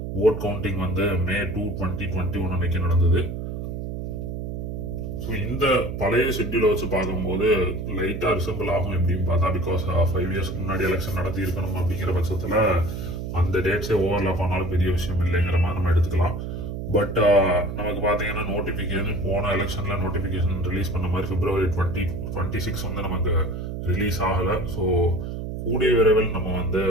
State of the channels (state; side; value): noise; right; hum, 5 dB below the sound